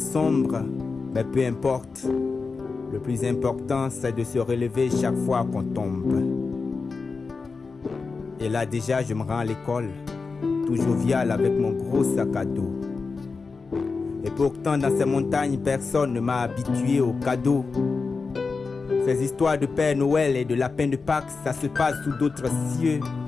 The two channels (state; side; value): quieter; right; 4.5 dB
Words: sombres, mais peu importe. Le plus important, c'est de se relever chaque fois qu'on tombe. Et là déjà, je me rends à l'école, tout jovial avec mon gros sac à dos. Et pourtant, dans ces montagnes, personne ne m'a habitué aux cadeaux. Ces histoires de Père Noël et de lapin de Pâques, ça se passe sous d'autres cieux.